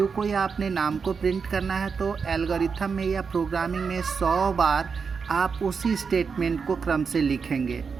को या अपने नाम को प्रिंट करना है तो एल्गोरिथम में या प्रोग्रामिंग में 100 बार आप उसी स्टेटमेंट को क्रम से लिखेंगे।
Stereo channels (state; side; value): quieter; left; 5.6 dB